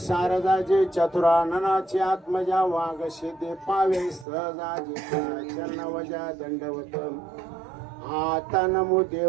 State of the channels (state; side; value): drops out; left; at 4.2 s